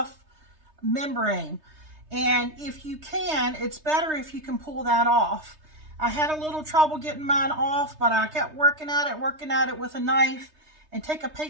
membrane. And if you can, it's better if you can pull that off. I had a little trouble getting mine off, but I kept working at it with a knife. And take a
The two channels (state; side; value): late; left; 3.3 ms